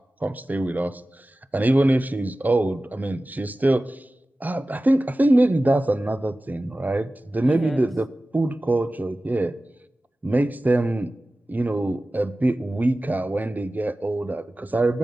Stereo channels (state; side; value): normal; both; correlation 0.96